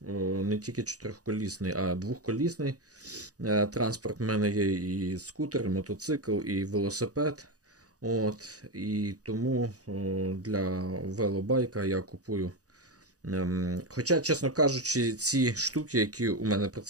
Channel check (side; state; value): left; late; 0.67 ms